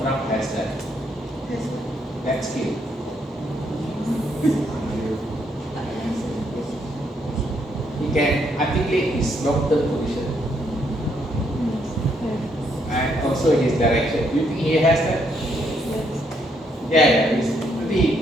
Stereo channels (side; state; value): both; normal; correlation 0.73